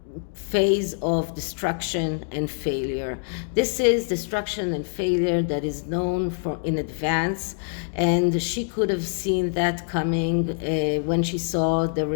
phase of destruction and failure. This is destruction and failure that is known for in advance, and she could have seen that coming when she saw the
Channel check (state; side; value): silent; right; digital silence